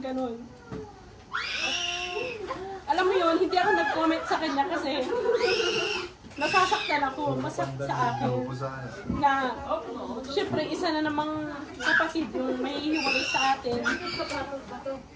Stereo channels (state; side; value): identical; both; correlation 1.00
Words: ganun. Alam mo yun, hindi ako nag-comment sa kanya kasi nasasaktan ako, masakit sa akin na syempre isa na namang kapatid yung may hiwalay sa atin.